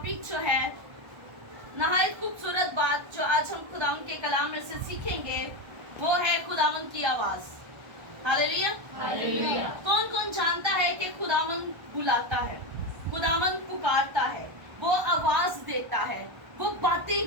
जो है नहायत खूबसूरत बात जो आज हम खुदावंद के कलाम में से सीखेंगे वो है खुदावंद की आवाज। हालेलुया। कौन कौन जानता है कि खुदावंद बुलाता है, खुदावंद पुकारता है, वो आवाज देता है, वो बातें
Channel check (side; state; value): left; late; 1.3 ms